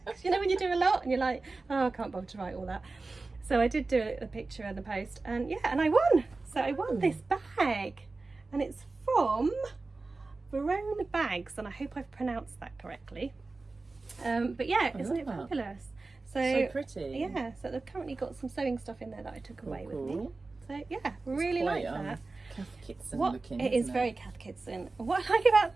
'Cause you know when you do a lot and you're like, oh, I can't bother to write all that. So I did do a picture and the post, and yeah, and I won. So I won this bag, and it's from Verona Bags, and I hope I've pronounced that correctly. But yeah, isn't it love that. fabulous? So pretty. Yeah, so they've currently got some sewing stuff in there that I took away with me. Cool. So yeah, really Quite, like that. Kath Kitson What looking. it is isn't very Kath Kitson. What I like about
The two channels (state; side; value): quieter; left; 3.6 dB